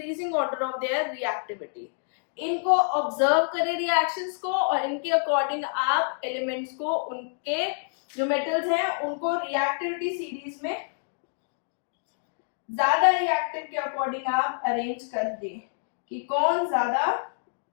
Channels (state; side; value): silent; right; digital silence